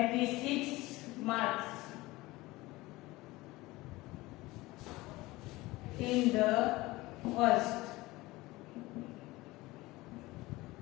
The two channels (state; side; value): quieter; right; 20.1 dB